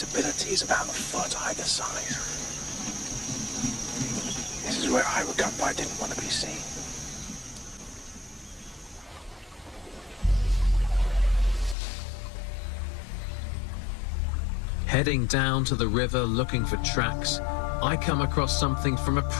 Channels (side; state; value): right; drops out; at 11.8 s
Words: is about a foot either side. This is where I would come, but I didn't want to be seen. Heading down to the river looking for tracks, I come across something from a